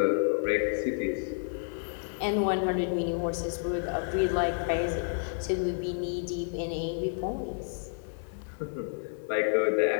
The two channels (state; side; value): silent; right; digital silence